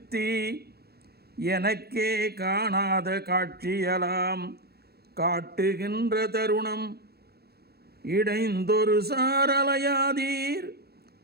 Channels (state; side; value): late; left; 0.46 ms